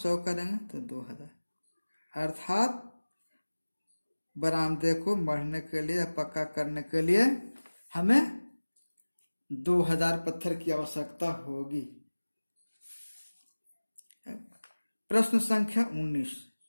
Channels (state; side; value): inverted; both; correlation -1.00